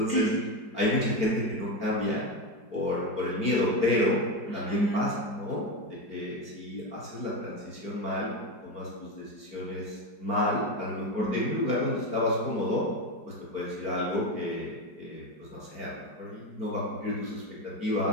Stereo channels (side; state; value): right; late; 5.0 ms